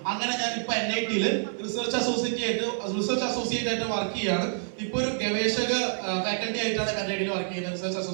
അങ്ങനെ ഞാൻ ഇപ്പൊ NITയിൽ റിസർച്ച് അസോസിയേറ്റ് ആയിട്ട് വർക്ക് ചെയ്യാണ്. ഇപ്പൊ ഒരു ഗവേഷക ഫാക്കൽറ്റി ആയിട്ടാണ് NITയിൽ വർക്ക് ചെയ്യുന്നത്, റിസർച്ച്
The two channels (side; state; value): left; silent; 57 dB below the other